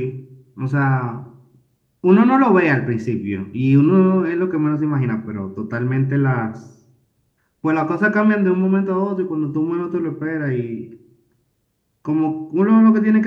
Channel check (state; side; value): identical; both; correlation 1.00